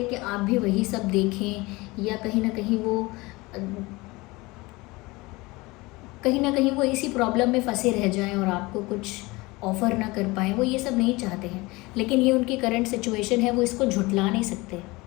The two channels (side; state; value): right; quieter; 22.8 dB